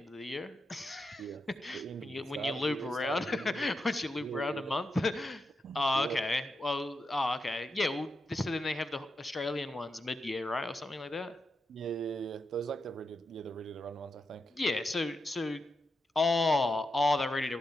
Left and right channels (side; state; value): both; normal; correlation 0.86